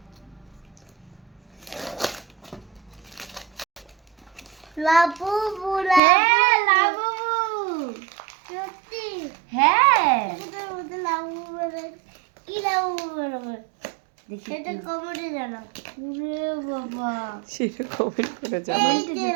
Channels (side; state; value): left; drops out; at 6.0 s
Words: লাবুবু, হ্যাঁ লাবু, সত্যি হ্যাঁ এটার মধ্যে লাবুবু বেরোয়। কি লাবুবু বেরোবে? দেখি সেটা কি। কমেন্টে জানাও। ওরে বাবা, সেটা কমেন্ট করে জানাও। এই যে